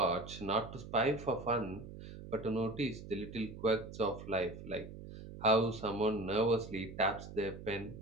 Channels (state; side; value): noise; right; hum, 12 dB below the sound